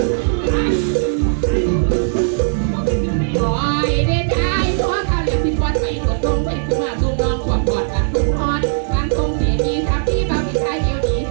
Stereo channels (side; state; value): left; silent; digital silence